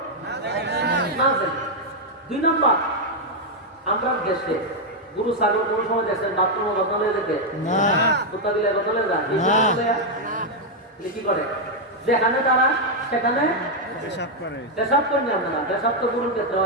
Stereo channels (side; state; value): both; normal; correlation -0.01